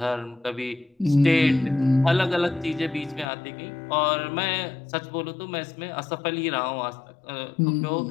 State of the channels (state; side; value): drops out; right; at 3.2 s